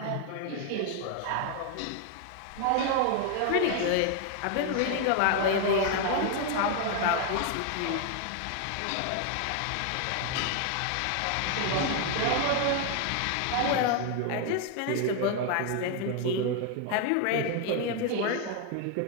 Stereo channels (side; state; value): both; different; correlation 0.01